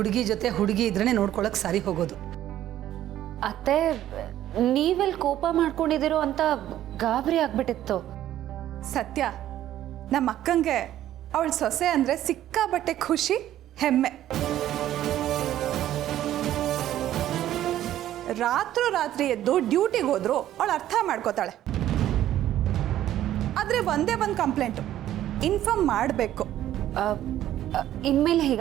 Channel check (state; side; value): quieter; left; 12.6 dB